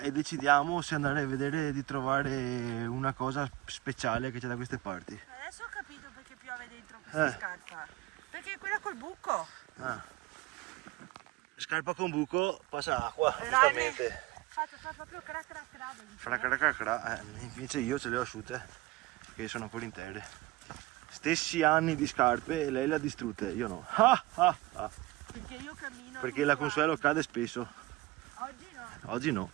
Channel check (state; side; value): quieter; left; 19.0 dB